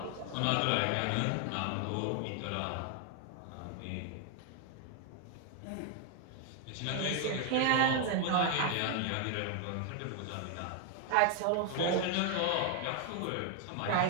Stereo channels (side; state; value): both; different; correlation 0.01